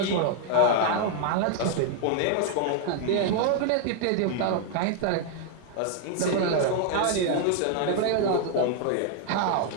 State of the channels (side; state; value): both; different; correlation 0.00